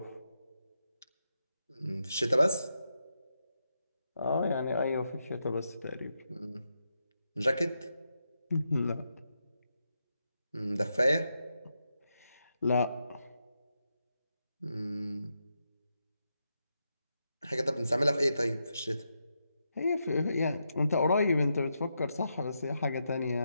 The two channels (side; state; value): both; inverted; correlation -0.84